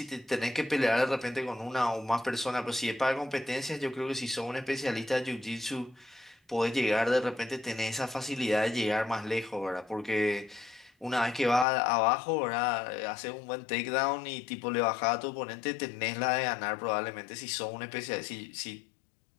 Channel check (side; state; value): right; drops out; at 11.7 s